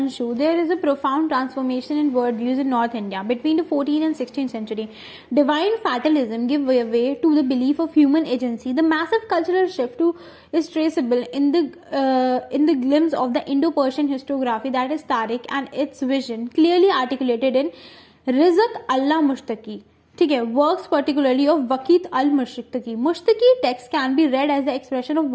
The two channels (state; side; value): identical; both; correlation 1.00